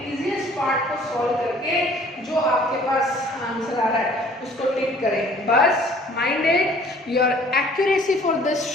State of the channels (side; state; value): both; normal; correlation 0.54